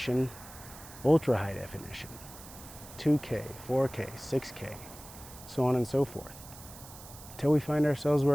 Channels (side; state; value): right; noise; hiss, 17 dB below the sound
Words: ultra high definition, 2K, 4K, 6K, so on and so forth. Until we find ourselves